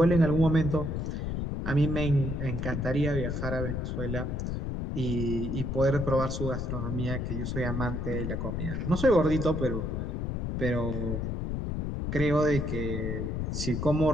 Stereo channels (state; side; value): noise; left; rumble, 2 dB below the sound